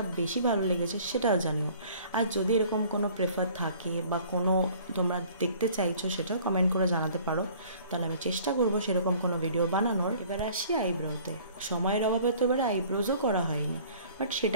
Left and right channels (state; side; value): inverted; both; correlation -0.52